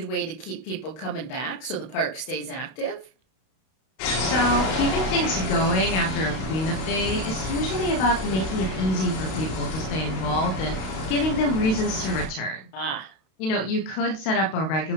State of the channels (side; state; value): right; late; 32 ms